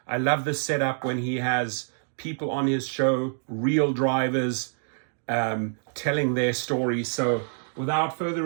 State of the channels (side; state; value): left; silent; digital silence